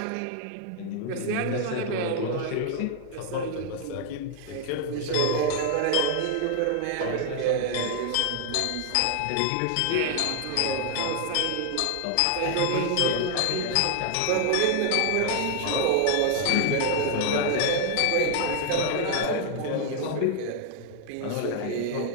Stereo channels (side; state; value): both; different; correlation 0.00